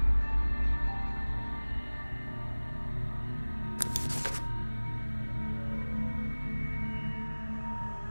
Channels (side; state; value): both; inverted; correlation -1.00